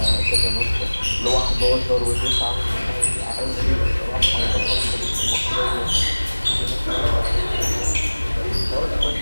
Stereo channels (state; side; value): inverted; both; correlation -1.00